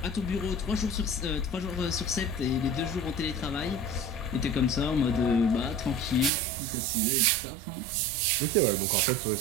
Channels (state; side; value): drops out; left; at 6.3 s